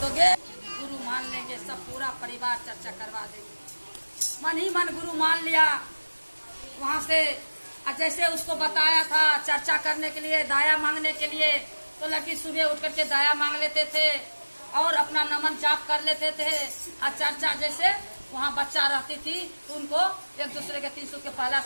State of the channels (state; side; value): inverted; both; correlation -1.00